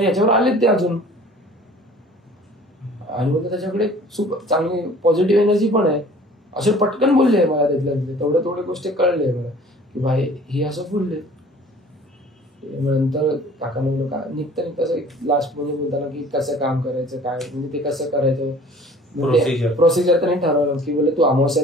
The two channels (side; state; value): both; normal; correlation 0.49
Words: याच्यावर आलेत ते अजून. आणि मग त्याच्याकडे खूप चांगली पॉझिटिव्ह एनर्जी पण आहे. असे पटकन बोलले मला तिथल्या थोड्या गोष्टी कळले मला की भाई हे असं बोलले. नंतर काकांना बोललो का निघता असं लास्ट म्हणजे बोलताना की कसं काम करायचं, काय म्हणजे ते कसं करायचं, प्रोसिजर त्यांनी ठरवलं की बोलले तू